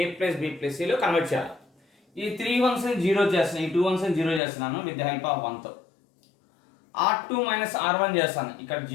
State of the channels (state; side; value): drops out; right; at 4.4 s